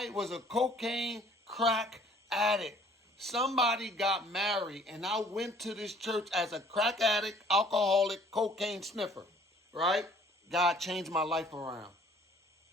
was a cocaine crack addict. Somebody got married, and I went to this church as a crack addict, alcoholic, cocaine sniffer. Right? God changed my life around.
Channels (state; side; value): normal; both; correlation 0.56